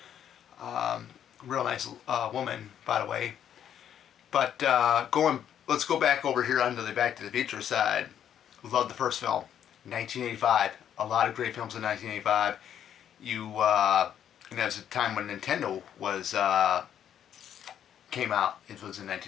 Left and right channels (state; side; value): quieter; right; 9.7 dB